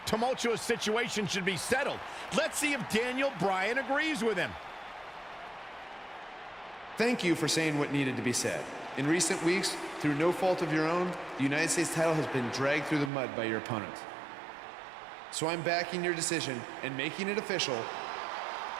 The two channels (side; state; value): left; drops out; at 13.1 s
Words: tumultuous situation should be settled. Let's see if Daniel Bryan agrees with him. Thank you for saying what needed to be said. In recent weeks, through no fault of your own, the United States title has been dragged through the mud by your opponent. So I'm backing your decision and making it official.